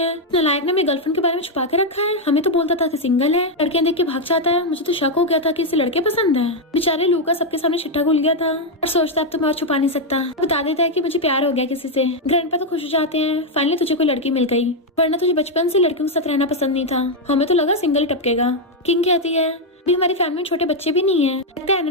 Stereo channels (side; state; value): both; normal; correlation 0.02